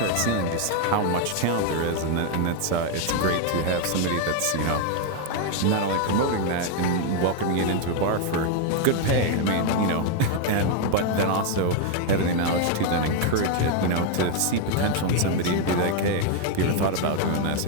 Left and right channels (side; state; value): both; different; correlation 0.00